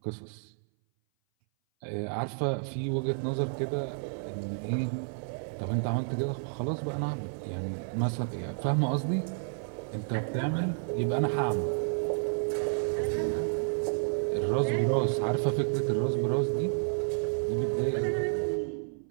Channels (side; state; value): left; silent; 57 dB below the other